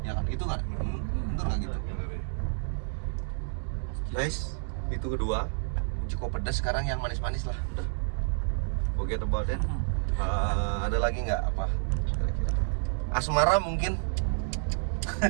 Ya kan, itu nggak? Bener nggak gitu? Guys, itu kedua. Cukup pedas, sekarang yang manis-manis lah. Udah. Forget about it. Ada lagi nggak apa? Kira-kira. Asmara mungkin.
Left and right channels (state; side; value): silent; left; digital silence